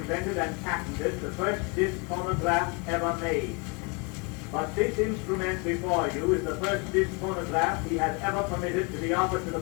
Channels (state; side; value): quieter; right; 31.8 dB